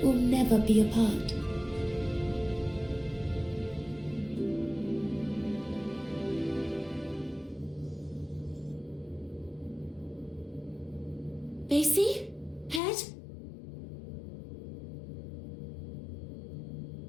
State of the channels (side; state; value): right; drops out; at 12.8 s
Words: will never be apart. Basie? Head?